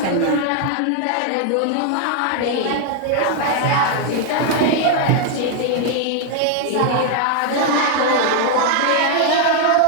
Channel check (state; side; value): different; both; correlation 0.00